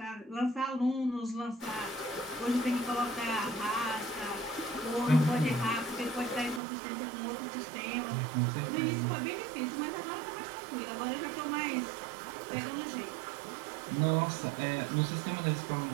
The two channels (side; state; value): left; drops out; at 6.6 s